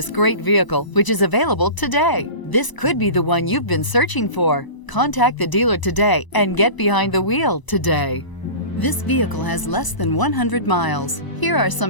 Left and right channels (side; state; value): right; late; 1.0 ms